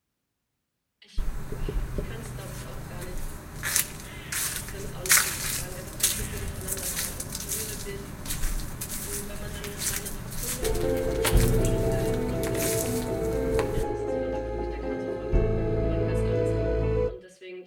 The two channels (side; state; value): both; identical; correlation 1.00